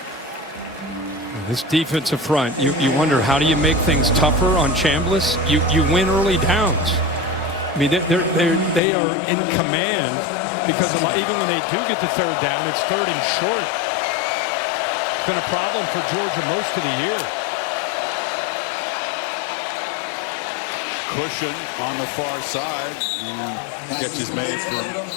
This defensive front, you wonder, how do you make things tougher on Chambliss? You win early downs. I mean, they are in command, because even when they do get the third down, it's 3rd and short. It's been a problem for Georgia most of the year. Cushion on the far side, and catch is made from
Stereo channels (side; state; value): right; drops out; at 8.8 s